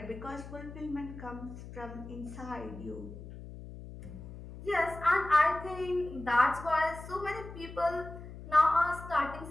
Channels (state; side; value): noise; left; hum, 13 dB below the sound